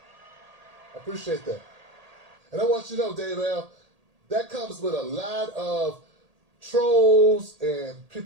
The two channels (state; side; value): late; left; 1.8 ms